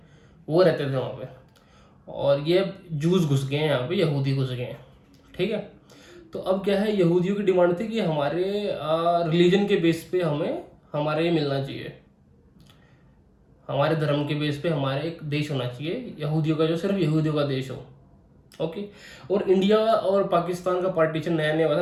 वो रहते थे वहाँ पे। और ये जूस घुस गए हैं यहाँ पे, यहूदी घुस गए हैं, ठीक है। तो अब क्या है, यहूदियों की डिमांड थी कि हमारे रिलीजन के बेस पे हमें हमारे ये मिलना चाहिए, हमारे धर्म के बेस पे हमारे एक देश होना चाहिए यहूदियों का, जो सिर्फ यहूदियों का देश हो। ओके। और इंडिया और पाकिस्तान का पार्टीशन नया नया हुआ था,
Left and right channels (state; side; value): identical; both; correlation 1.00